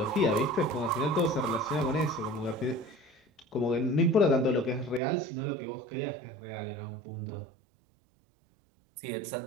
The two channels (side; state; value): left; drops out; at 5.0 s